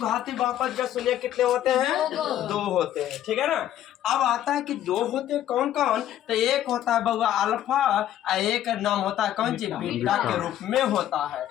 बहुपद का शून्य कितने होते हैं? 2 होते हैं, ठीक है ना। अब आता है कि 2 होते हैं कौन कौन, तो एक होता है बउआ अल्फा और एक नाम होता है कौन चीज, बीटा के रूप में होता है।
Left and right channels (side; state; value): right; quieter; 11.9 dB